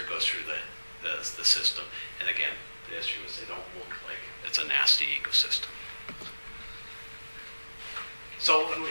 goes through the system. And again, the issue is they don't look like it's a nasty ecosystem. So when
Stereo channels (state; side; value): inverted; both; correlation -1.00